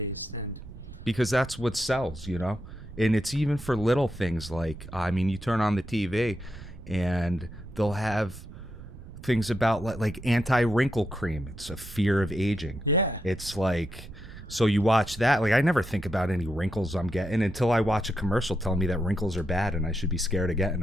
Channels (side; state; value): right; noise; rumble, 14 dB below the sound